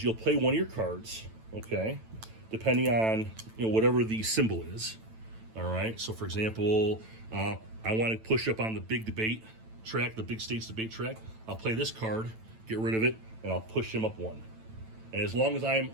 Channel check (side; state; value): left; late; 9.0 ms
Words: you'll play one of your cards, okay, depending on, whatever the symbol is. All right? So, for example, I want to push up on the big debate track, the big states debate track. I'll play this card, get rid of it, and I'll push him up 1. And as long as I'm